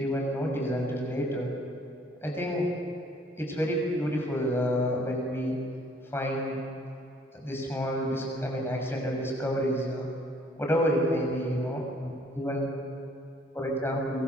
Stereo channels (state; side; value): normal; both; correlation 0.60